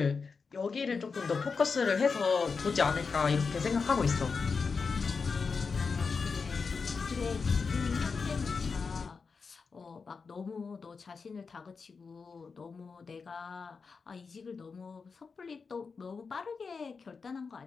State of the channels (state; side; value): quieter; right; 5.0 dB